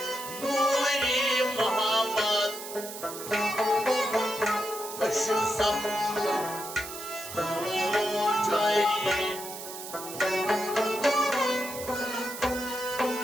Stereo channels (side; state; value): right; noise; hiss, 10 dB below the sound